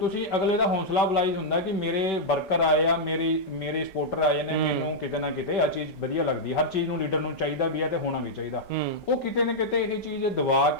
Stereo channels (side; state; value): right; late; 5.3 ms